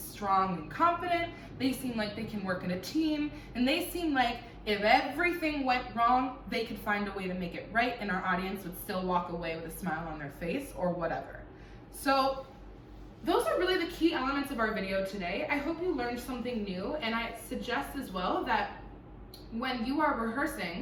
and confident. They seem like they can work in a team. And they seem like if everything went wrong, they could find a way to make it right and our audience would still walk away with a smile on their face or whatever. So those are really the key elements of our video today. I hope you learned something new, and I suggest as well that when you are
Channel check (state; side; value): identical; both; correlation 1.00